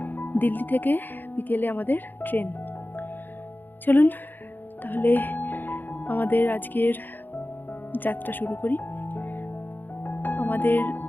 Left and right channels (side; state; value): right; late; 0.089 ms